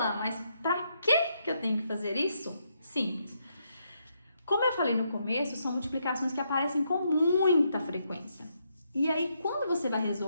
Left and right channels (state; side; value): inverted; both; correlation -0.78